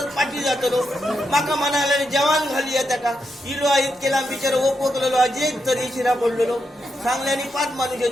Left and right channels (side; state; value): both; normal; correlation 0.83